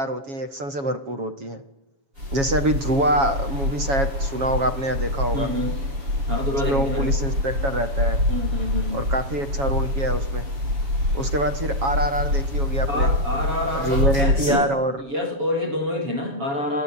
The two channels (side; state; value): left; late; 7.3 ms